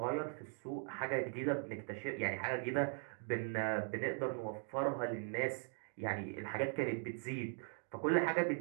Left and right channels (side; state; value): left; silent; 51 dB below the other